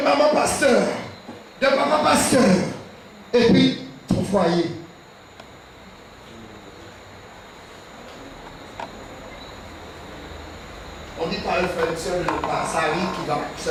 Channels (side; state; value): both; identical; correlation 1.00